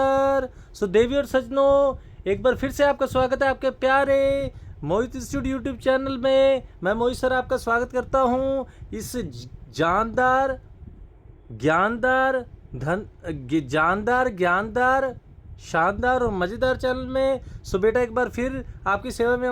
So देवी और सजनों, एक बार फिर से आपका स्वागत है आपके प्यारे मोहित institute YouTube channel में। मैं मोहित सर आपका स्वागत करता हूँ इस जानदार ज्ञानदार शानदार और मज़ेदार चैनल में। सो बेटा एक बार फिर आपकी सेवा में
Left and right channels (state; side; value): identical; both; correlation 1.00